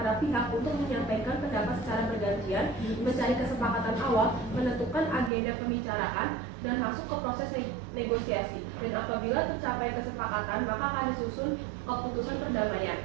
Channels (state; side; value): drops out; left; at 5.3 s